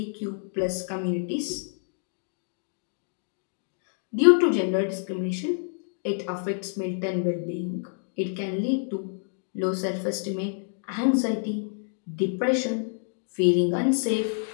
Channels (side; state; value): right; silent; digital silence